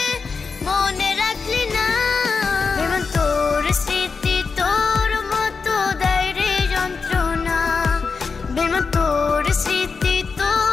মনে রাখলি না বেমান তোর স্মৃতি তোর মতো দেয় রে যন্ত্রণা বেমান তোর স্মৃতি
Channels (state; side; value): quieter; right; 4.9 dB